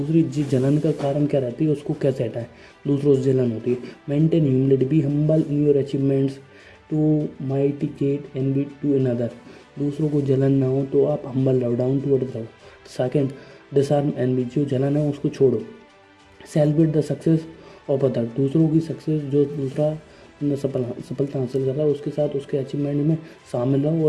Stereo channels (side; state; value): both; identical; correlation 1.00